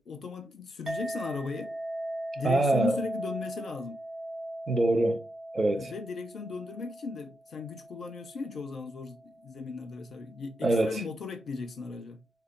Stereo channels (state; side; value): normal; both; correlation 0.84